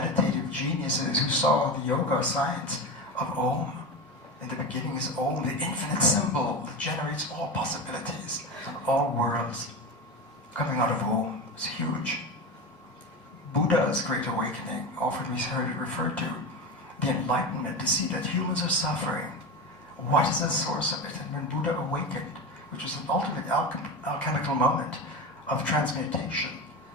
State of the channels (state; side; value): normal; both; correlation 0.22